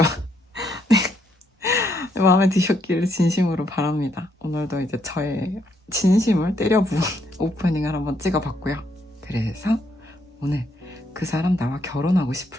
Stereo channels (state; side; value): normal; both; correlation 0.74